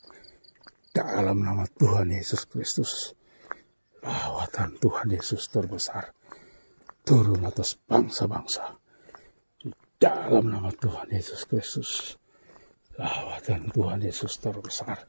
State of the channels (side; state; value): both; inverted; correlation -1.00